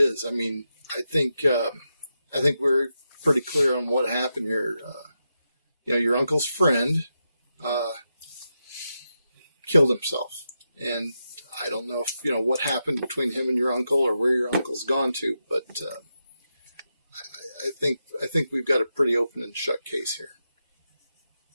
I mean, I think we're pretty clear on what happened here. Your uncle's friend killed himself. And I don't know if, what happened between him and your uncle or where your uncle's gone to, but I think we've got a pretty open and shut case here.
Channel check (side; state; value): both; inverted; correlation -0.87